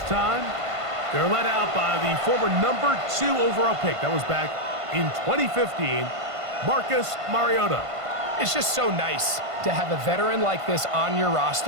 time. They're led out by the former number 2 overall pick. That was back in 2015, Marcus Mariota. It's just so nice to have a veteran like this on your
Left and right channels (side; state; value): left; late; 1.5 ms